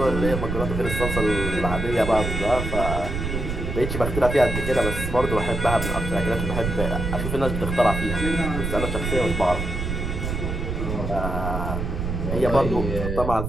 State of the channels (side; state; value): right; noise; rumble, 3 dB below the sound